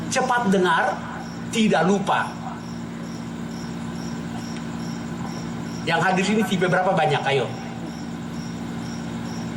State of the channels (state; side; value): identical; both; correlation 1.00